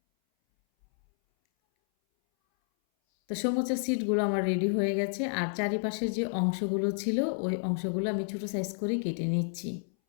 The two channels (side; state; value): right; silent; 58 dB below the other